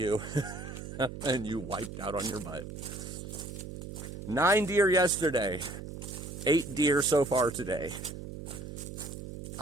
And you wiped out on your butt. 9 deer yesterday. 8 deer so far today.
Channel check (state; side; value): noise; right; hum, 10 dB below the sound